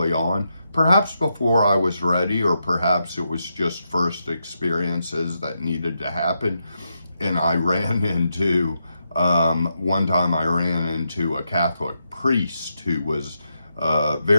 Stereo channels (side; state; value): both; inverted; correlation -0.84